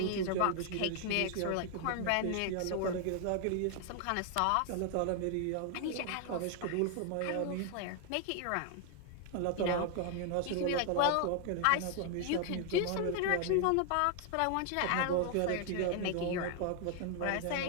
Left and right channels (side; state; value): both; different; correlation 0.00